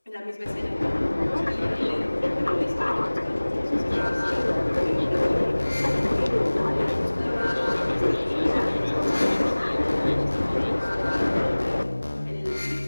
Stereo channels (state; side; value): inverted; both; correlation -1.00